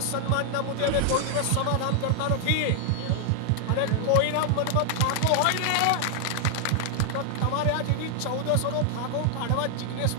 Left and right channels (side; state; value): both; different; correlation 0.00